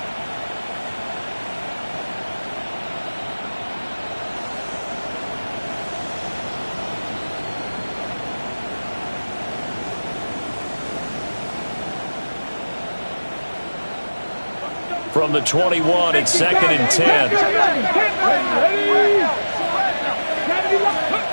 From the 21, it's 2nd and 10.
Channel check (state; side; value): inverted; both; correlation -1.00